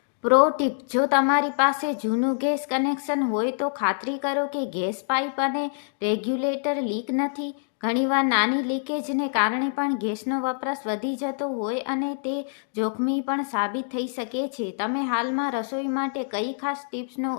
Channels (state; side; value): silent; right; digital silence